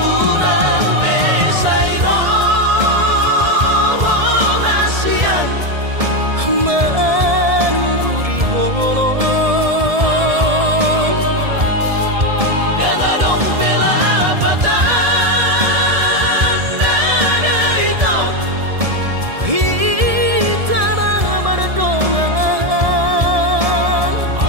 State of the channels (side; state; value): left; late; 1.7 ms